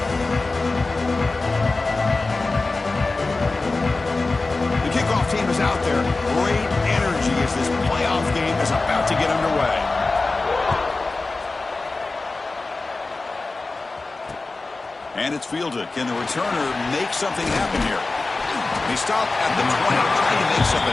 And it's fielded. Can the returner make something happen here? He stopped at the 20, trying to make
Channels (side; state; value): right; quieter; 3.5 dB